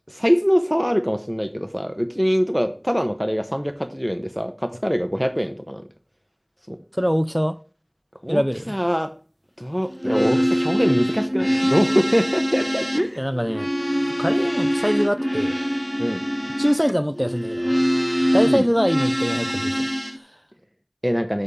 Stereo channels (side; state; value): both; identical; correlation 1.00